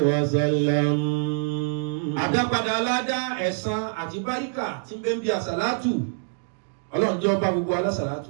وسلم. àdápadà aládá ẹ̀san àti báríkà tí ń bẹ ń bí àsàlátù Ọlọ́run jẹ́ ọba gbogbo alásàlátù.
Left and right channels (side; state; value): left; silent; digital silence